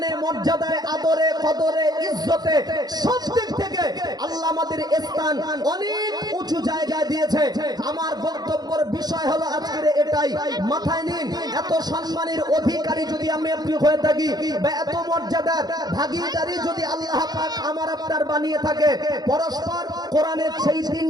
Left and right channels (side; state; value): left; late; 0.19 ms